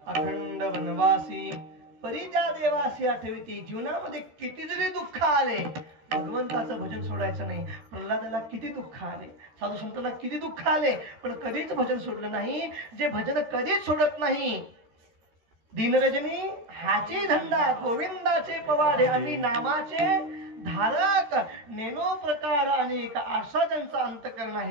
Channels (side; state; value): left; late; 13 ms